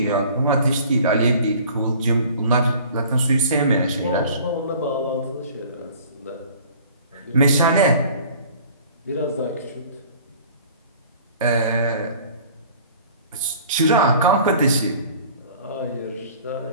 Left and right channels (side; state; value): both; inverted; correlation -0.48